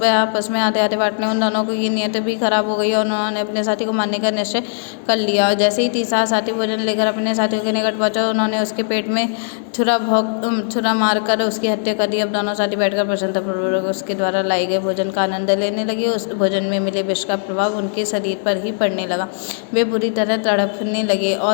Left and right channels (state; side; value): silent; right; 55 dB below the other